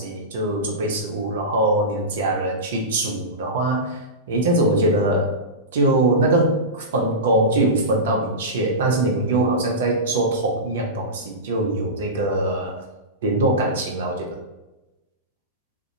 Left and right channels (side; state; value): both; normal; correlation -0.18